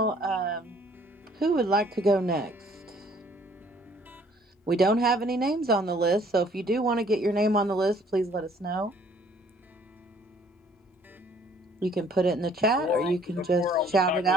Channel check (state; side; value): normal; both; correlation 0.59